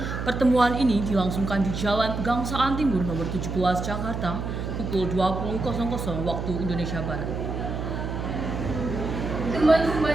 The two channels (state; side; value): noise; right; hum, 4 dB below the sound